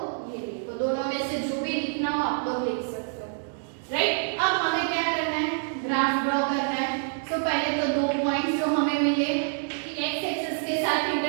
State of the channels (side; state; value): left; silent; 58 dB below the other